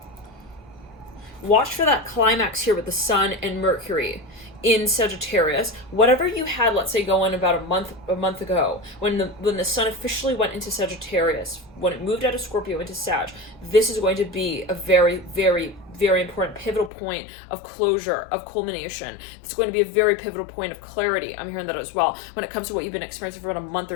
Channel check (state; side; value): drops out; right; at 16.9 s